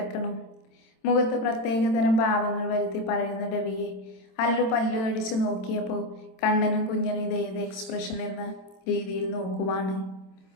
മുഖത്ത് പ്രത്യേകതരം ഭാവങ്ങൾ വരുത്തി പറയുന്ന രവിയെ അല്ലു പല്ലു കടിച്ചു നോക്കിയപ്പോൾ കണ്ണനും കുഞ്ഞനും ഇതേത് എക്സ്പ്രഷൻ എന്ന രീതിയിൽ നോക്കുവാണ്.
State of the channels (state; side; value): late; right; 27 ms